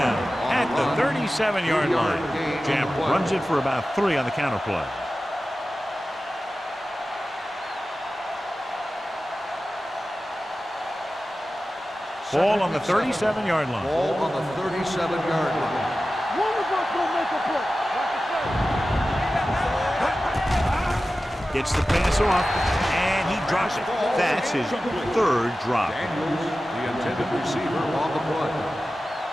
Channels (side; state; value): both; normal; correlation 0.95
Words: at the 37-yard line. Jamp runs it for about 3 on the counter play. Ball on the 37-yard line. Ball on the 37-yard line. One of us gonna make a play. Gets the pass off, and he drops it. That's his 3rd drop. Daniels, the intended receiver, on the play.